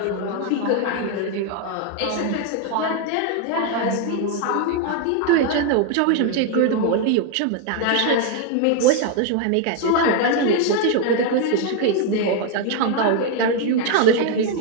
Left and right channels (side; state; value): both; different; correlation 0.01